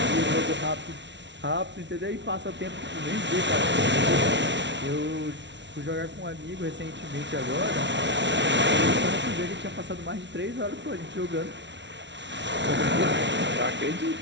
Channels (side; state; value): left; late; 0.52 ms